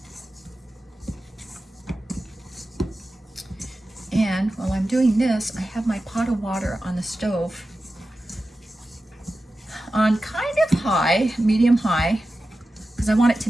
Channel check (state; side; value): normal; both; correlation 0.93